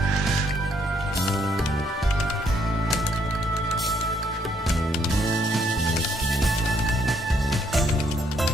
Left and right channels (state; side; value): normal; both; correlation 0.71